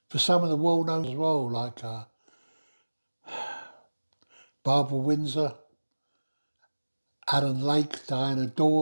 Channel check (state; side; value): inverted; both; correlation -1.00